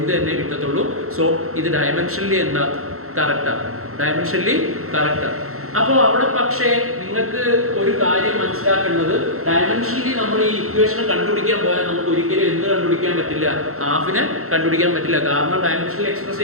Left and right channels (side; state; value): left; late; 0.63 ms